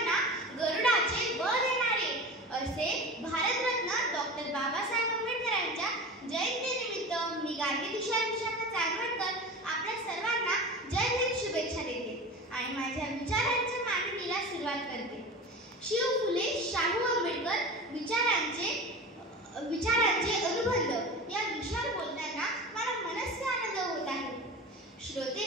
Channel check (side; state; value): both; normal; correlation 0.32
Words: गरुडाचे बळ देणारे असे भारतरत्न डॉक्टर बाबासाहेब आंबेडकरांच्या जयंतीनिमित्त मी गार्गी तुषार विशाखा चांदवडकर आपल्या सर्वांना जय हिंद शुभेच्छा देते आणि माझ्या विचारांच्या मांडणीला सुरुवात करते. शिव फुले शाहू आंबेडकर विचारांचे अनुबंध या विषयावर बोलताना मला मनस्वी आनंद होत आहे. श्रोते